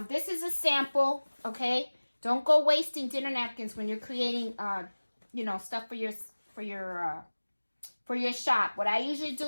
This is a sample, okay? Don't go wasting dinner napkins when you're creating, stuff for your shop. What I usually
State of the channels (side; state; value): both; inverted; correlation -1.00